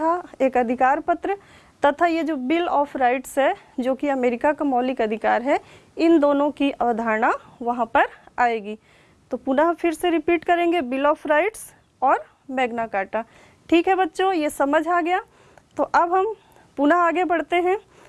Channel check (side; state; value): both; identical; correlation 1.00